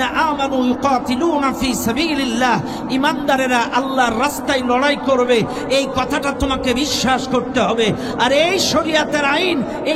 আমানু ইউকাতিলুনা ফি সাবিলিল্লাহ, ইমানদারেরা আল্লাহর রাস্তায় লড়াই করবে, এই কথাটা তোমাকে বিশ্বাস করতে হবে। আর এই শরীয়তের আইন,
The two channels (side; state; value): both; identical; correlation 1.00